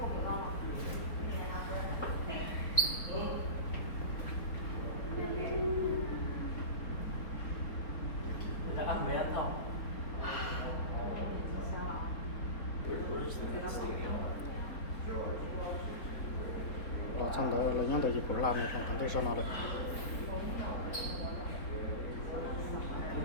lo xong đó là những cái gì của làm này còn cần để cho nó được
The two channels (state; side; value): late; right; 4.0 ms